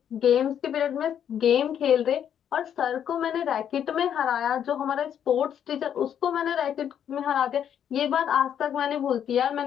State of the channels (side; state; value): right; quieter; 9.2 dB